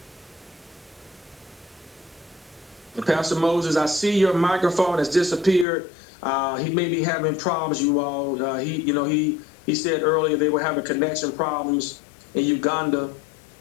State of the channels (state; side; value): drops out; right; at 5.7 s